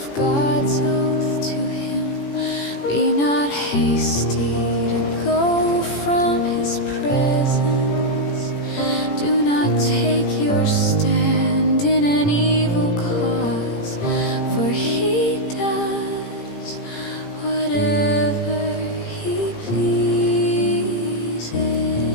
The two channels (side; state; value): right; late; 18 ms